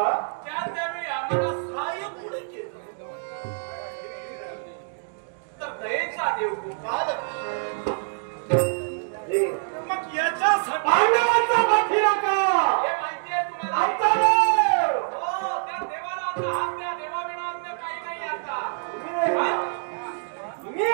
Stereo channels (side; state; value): left; silent; digital silence